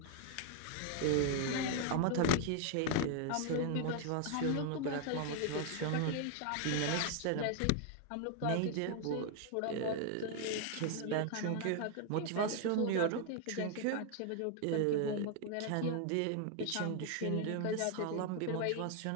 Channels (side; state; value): both; different; correlation 0.00